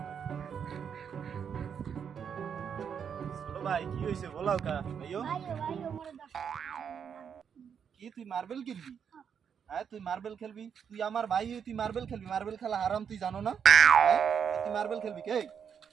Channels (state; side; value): quieter; left; 7.4 dB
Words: ছোট ভাই কি হইছে বলাও কা ভাইও ভাইও মোরে 10 কি তুই মার্বেল কিনবি হ্যাঁ তুই মার্বেল খেলবি তুই আমার ভাই তুই মার্বেল খেলবি মার্বেল খেলা হারাম তুই জানো না তুই মার্বেল খেলবি কে